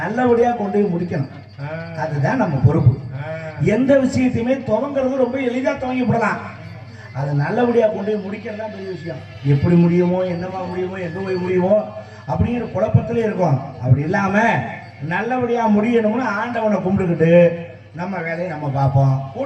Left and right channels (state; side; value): identical; both; correlation 1.00